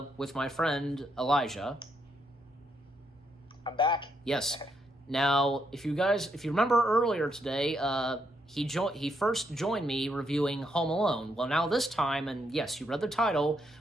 with my friend Elijah. I'm back. Yes. Now, if you remember earlier today, he first joined me reviewing Home Alone. Well, now this time, and yes, you read the title,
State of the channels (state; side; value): normal; both; correlation 0.77